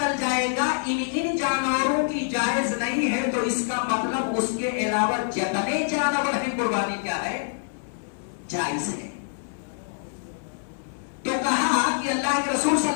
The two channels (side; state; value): right; silent; digital silence